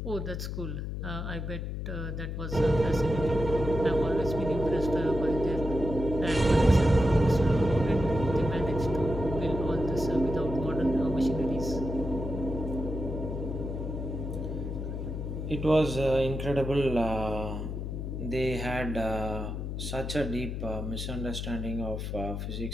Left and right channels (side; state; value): left; noise; hum, 4 dB below the sound